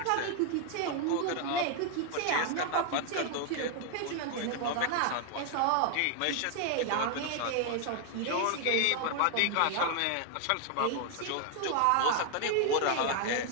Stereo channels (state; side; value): different; both; correlation 0.00